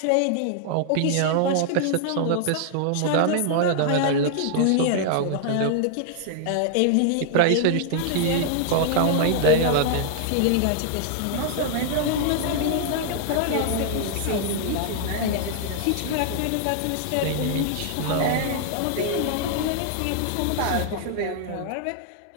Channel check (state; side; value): different; both; correlation -0.01